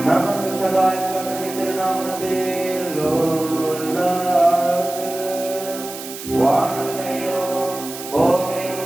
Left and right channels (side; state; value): right; noise; hiss, 11 dB below the sound